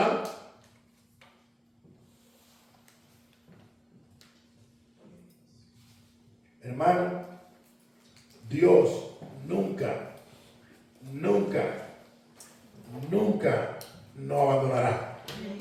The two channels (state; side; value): identical; both; correlation 1.00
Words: Hermano, Dios nunca nos abandonará.